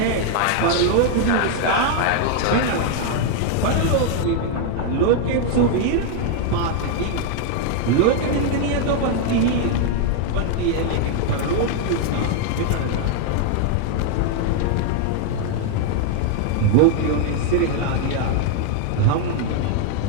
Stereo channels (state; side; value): different; both; correlation 0.00